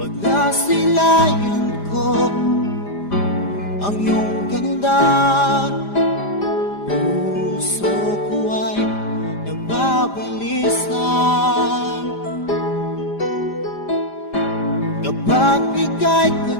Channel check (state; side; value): late; right; 5.0 ms